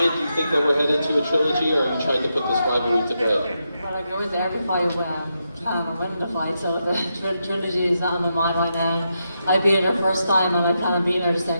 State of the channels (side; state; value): both; inverted; correlation -0.85